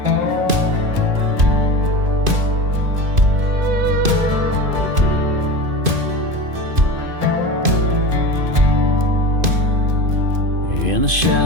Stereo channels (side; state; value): left; late; 2.5 ms